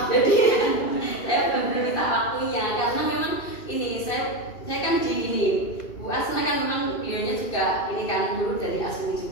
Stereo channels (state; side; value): late; right; 2.6 ms